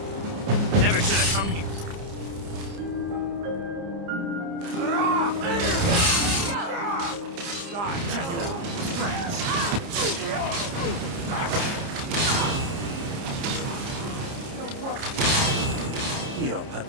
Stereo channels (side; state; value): left; late; 29 ms